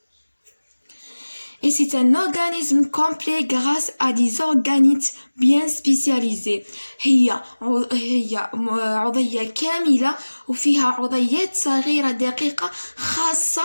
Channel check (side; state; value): both; inverted; correlation -1.00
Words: Et c'est un organisme complet grâce à des organites bien spécialisés. هي عضية كاملة وفيها عضيات صغيرة دقيقة